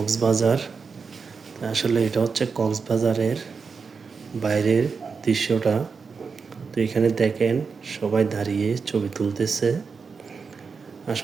আসলে এটা হচ্ছে কক্সবাজারের বাইরের দৃশ্যটা। তো এখানে দেখেন সবাই দাঁড়িয়ে ছবি তুলতেছে।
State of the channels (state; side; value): quieter; left; 5.3 dB